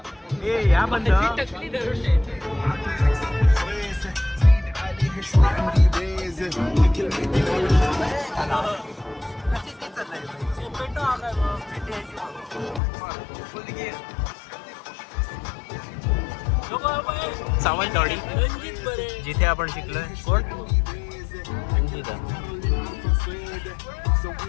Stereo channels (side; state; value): right; drops out; at 12.8 s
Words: ए या बंद. सावंतवाडी जिथे आपण शिकलोय. कोण? रंजिता.